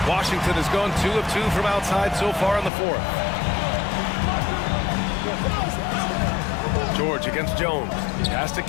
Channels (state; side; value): drops out; right; at 2.7 s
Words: Washington has gone 2 of 2 from outside so far in the 4th. George against Jones. Pass to